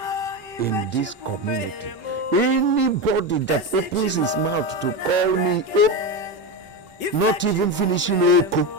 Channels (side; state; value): right; late; 5.3 ms